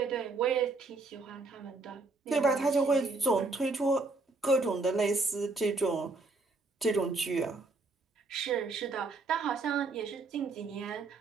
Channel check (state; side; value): quieter; left; 3.6 dB